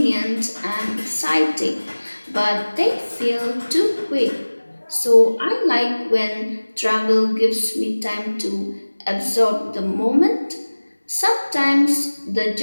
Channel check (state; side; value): inverted; both; correlation -1.00